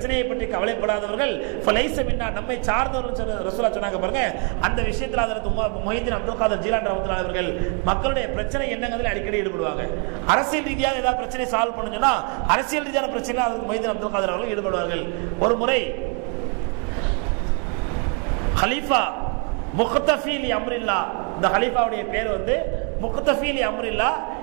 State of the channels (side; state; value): left; quieter; 37.9 dB